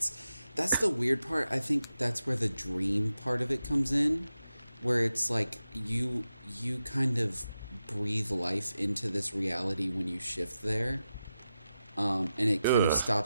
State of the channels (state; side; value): inverted; both; correlation -0.90